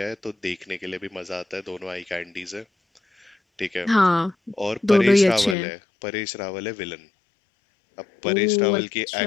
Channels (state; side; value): drops out; right; at 5.6 s